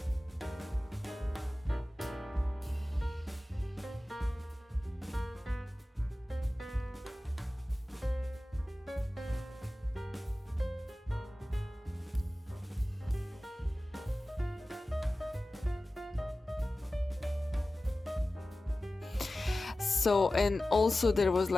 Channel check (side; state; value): both; normal; correlation 0.96